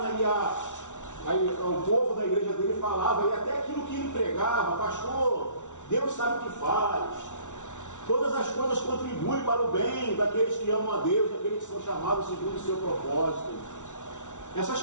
e o povo da igreja dele falava, e até aquilo que ele pregava: pastor, Deus sabe o que faz, todas as coisas contribuem para o bem daqueles que amam a Deus, daqueles que são chamados segundo o seu propósito. Essas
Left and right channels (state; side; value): late; right; 0.86 ms